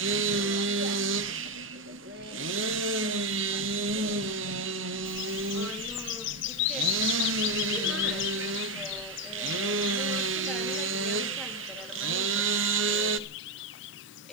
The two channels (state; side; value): normal; both; correlation 0.08